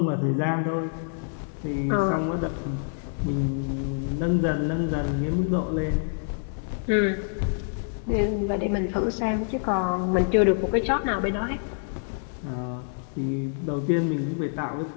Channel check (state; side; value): silent; right; 61 dB below the other